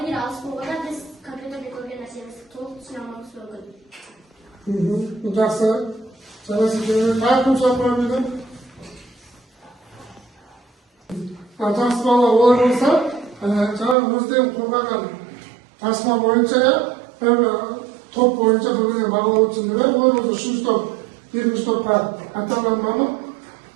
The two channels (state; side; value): drops out; left; at 14.0 s